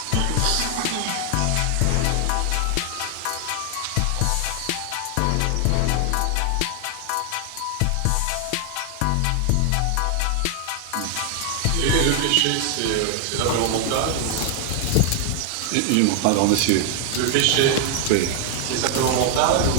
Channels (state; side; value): different; both; correlation 0.00